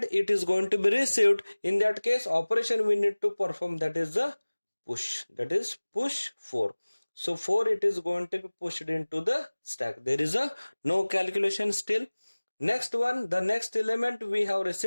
it is going to be received, in that case operation we need to perform, that is the push, that is push 4. So 4 it is going to be pushed into the stack. There is a no calculation still. Next one, the next element we have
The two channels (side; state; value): both; inverted; correlation -1.00